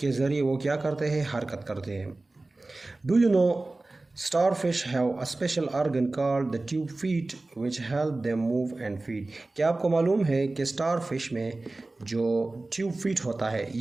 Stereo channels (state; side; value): quieter; left; 3.1 dB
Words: ज़रिए वो क्या करते हैं, हरकत करते हैं. Do you know starfish have a special organ called the tube feet which help them move and feed. क्या आपको मालूम है कि starfish में जो ट्यूब फीट होता है,